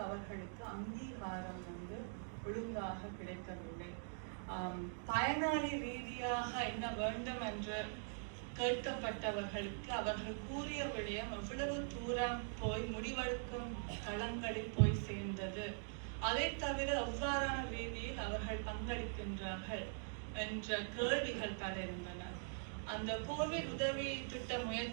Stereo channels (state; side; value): silent; left; digital silence